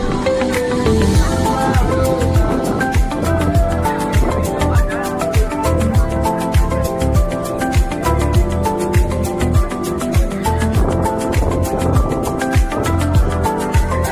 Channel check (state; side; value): identical; both; correlation 1.00